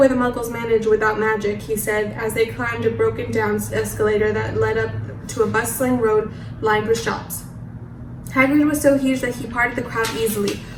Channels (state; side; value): identical; both; correlation 1.00